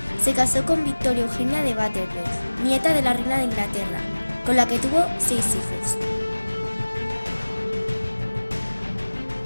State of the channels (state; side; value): inverted; both; correlation -1.00